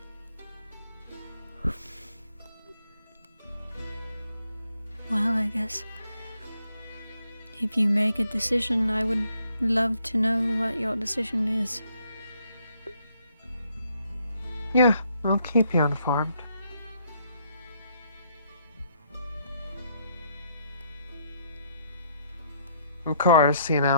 Well, I guess if you make a decision, I would love to know what your decision is. Yeah, I'll keep you informed. Of course, you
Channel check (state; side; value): inverted; both; correlation -0.70